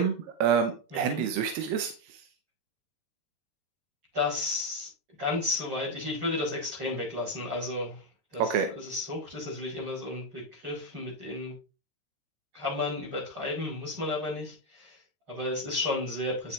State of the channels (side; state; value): left; late; 13 ms